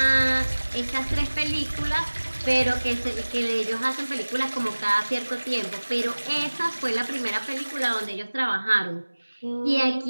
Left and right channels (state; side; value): inverted; both; correlation -1.00